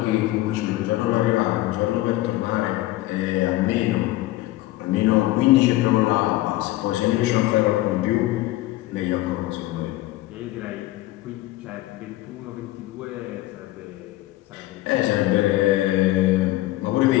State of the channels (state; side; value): quieter; right; 17.2 dB